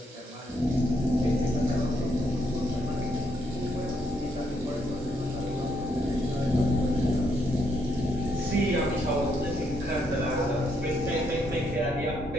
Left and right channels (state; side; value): normal; both; correlation 0.75